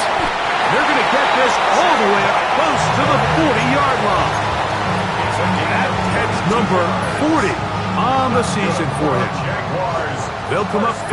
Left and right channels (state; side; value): identical; both; correlation 1.00